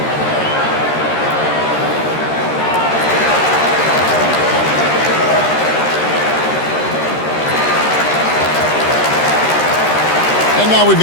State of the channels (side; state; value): right; late; 13 ms